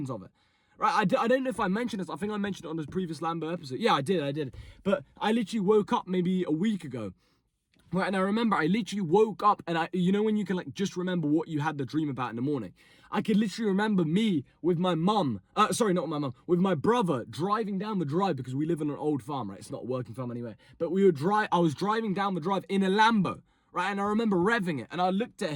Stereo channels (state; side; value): identical; both; correlation 1.00